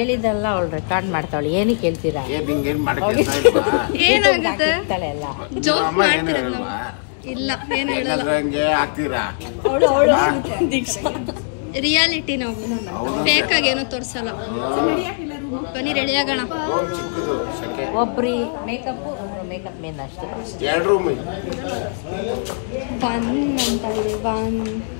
ಅವಳು ರೆಕಾರ್ಡ್ ಮಾಡ್ತಾವಳು. ಏನಕ್ಕೆ ಹೇಳ್ತೀರಾ? ಏನಾಗುತ್ತೆ? ಜೋಕ್ ಮಾಡ್ತಿರೋದು ನಾವು. ಇಲ್ಲ ಏನು ಹೇಳಲ್ಲ, ರಿಯಾಲಿಟಿ ನಾವು ಫೇಕ್ ಆಗಿ ಏನೋ ತೋರ್ಸಲ್ಲ. ಬನ್ನಿ ರೆಡಿ ಆಗೋಣ. ಒಬ್ರಿ ಮೇಕಪ್ ಮೇಕಪ್ ಮೇನ್ ಅಷ್ಟೇ. ಬನ್ ಅಂತ ಇದೆ, ಬನ್.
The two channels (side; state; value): right; silent; digital silence